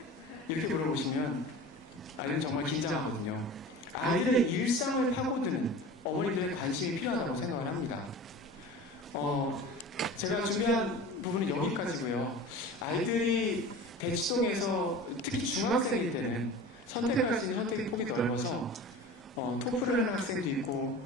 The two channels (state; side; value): normal; both; correlation 0.36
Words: 이렇게 물어보시면 아이들은 정말 긴장하거든요. 아이들의 일상을 파고드는 어머님들의 관심이 필요하다고 생각을 합니다. 제가 준비한 부분은 여기까지고요. 아이들이 대치동에서 특히 중학생일 때는 선택할 수 있는 선택의 폭이 넓어서 토플을 하는 학생도 있고